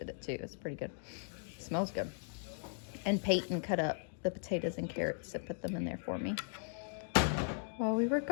it too. It's pretty good. It smells good. And Payton cut up the potatoes and carrots and put them in there for me. While we were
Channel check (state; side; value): silent; right; 53 dB below the other